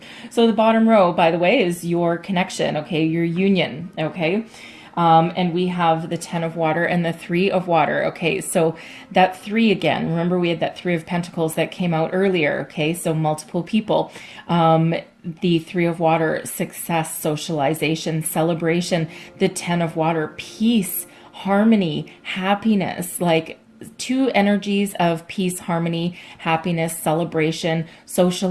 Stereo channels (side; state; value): both; identical; correlation 1.00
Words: so the bottom row, by the way, is your connection, okay, your union, okay? And we have the 10 of water and the 3 of water. Okay, so that 3 again, remember we had that 3 of pentacles that came out earlier. Okay, so multiple people. The 3 of water, success, socialization, celebration. The 10 of water, peace, harmony, happiness, like 2 energies of peace, harmony, happiness, celebration,